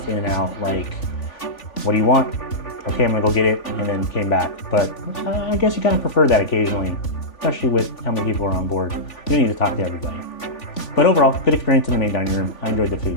in and out, like, what do you want? Okay, I'm gonna go get it, and then came back. But I guess you kind of prefer that occasionally, especially with how many people are on board. You don't need to talk to everybody. But overall, good experience in the main dining room. I enjoyed the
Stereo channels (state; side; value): late; right; 3.5 ms